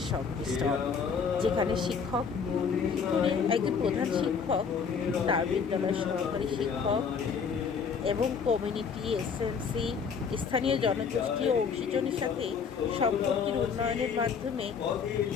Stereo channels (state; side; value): quieter; right; 6.1 dB